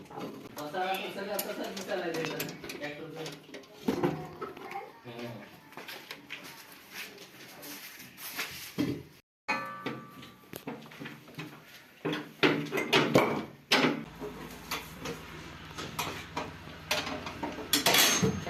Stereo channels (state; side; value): identical; both; correlation 1.00